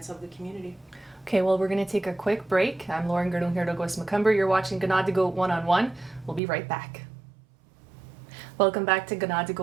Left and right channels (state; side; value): drops out; left; at 6.4 s